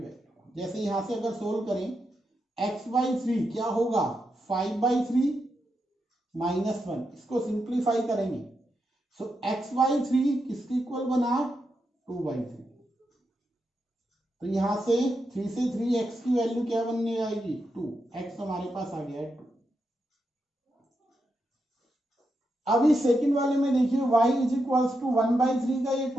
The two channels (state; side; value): normal; both; correlation 0.85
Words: जैसे यहां से अगर सोल्व करें, x by 3 क्या होगा, 5 by 3 minus 1, इसको सिंप्लीफाई करेंगे। सो x by 3 किसके इक्वल बना, 2 by 3। तो यहां से 3 से 3 x की वैल्यू क्या बनने आएगी, 2, x हमारे पास आ गया है 2। अभी सेकंड वाले में देखिए y is equals to 1 by 3 का, ये